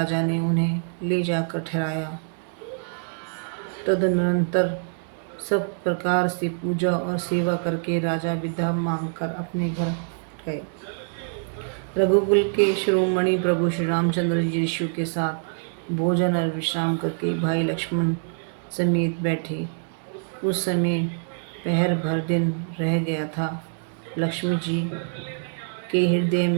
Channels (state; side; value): silent; left; digital silence